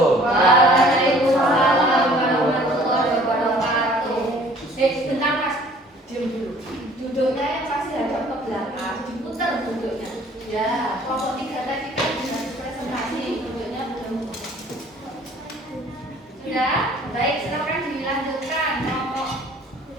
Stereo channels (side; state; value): both; normal; correlation 0.54